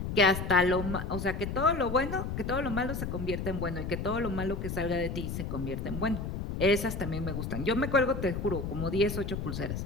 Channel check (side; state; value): left; noise; rumble, 4 dB below the sound